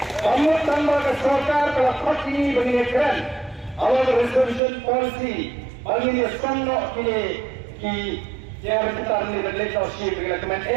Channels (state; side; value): drops out; left; at 4.6 s